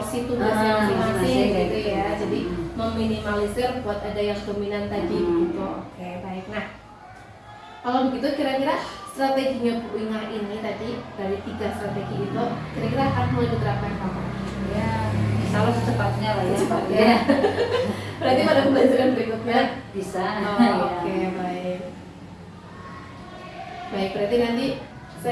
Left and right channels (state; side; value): identical; both; correlation 1.00